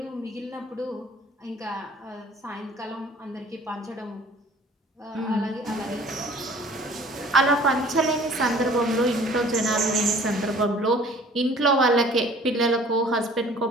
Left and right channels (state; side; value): normal; both; correlation 0.51